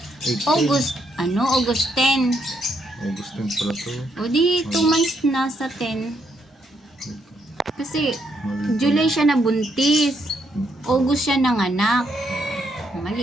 8 August, August 10. August 10 pala to. O di, 2 months na sa 10. Kasi, Mali. July siya nabuntis. August siya nanganak.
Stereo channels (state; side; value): normal; both; correlation 0.75